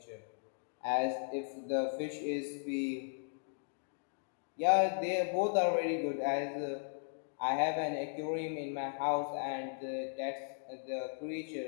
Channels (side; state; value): right; silent; digital silence